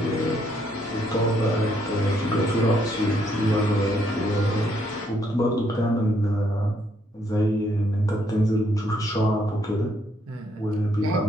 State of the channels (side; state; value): both; normal; correlation 0.72